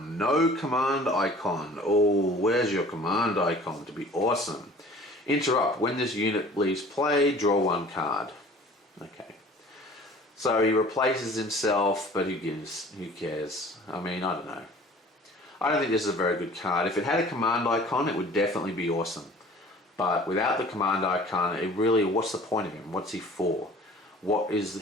No command icon. Oh, where's your command icon to be awesome? Interrupt. When this unit leaves play, draw 1 card. Okay. So he replaces himself, but who gives? Who cares? I mean, I don't know. I don't think this is a very good card. If it had a command icon, it would definitely be awesome. But without the command icon, it really, what's the point of him? What's he for? What is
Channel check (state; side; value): normal; both; correlation 0.47